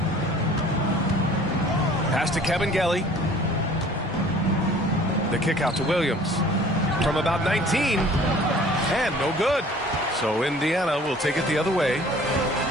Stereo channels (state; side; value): normal; both; correlation 0.51